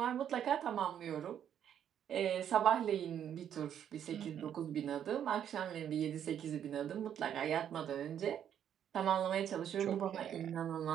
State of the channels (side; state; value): left; quieter; 9.5 dB